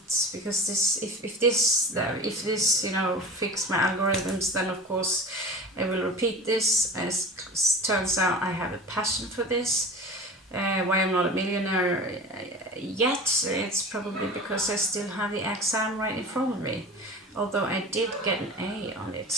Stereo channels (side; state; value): both; normal; correlation 0.35